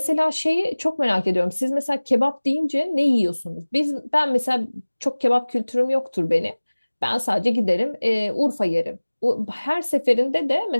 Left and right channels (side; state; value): both; inverted; correlation -1.00